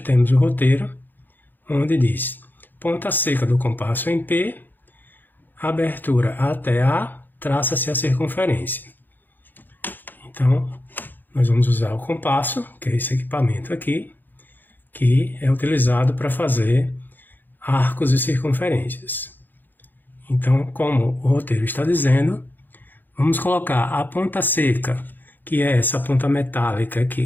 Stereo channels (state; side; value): late; right; 0.089 ms